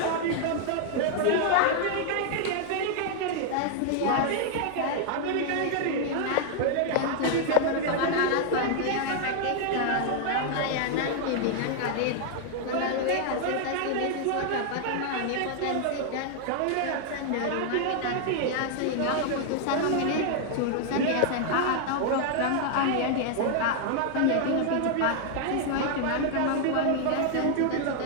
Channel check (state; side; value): different; both; correlation 0.00